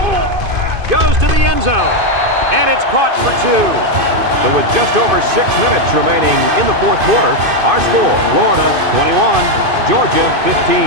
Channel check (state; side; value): late; left; 2.5 ms